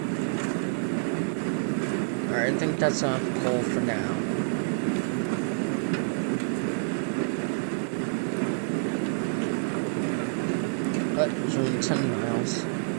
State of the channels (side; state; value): left; silent; digital silence